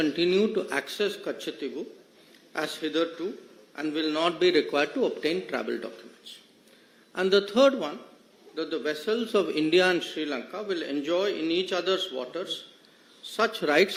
to access Katchatheevu as hitherto and will not be required to obtain travel documents. And the third one, that the vessels of India and Sri Lanka will enjoy in each other's waters such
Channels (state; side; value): identical; both; correlation 1.00